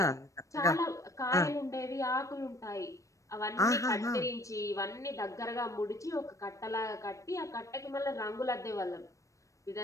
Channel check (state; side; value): late; right; 0.15 ms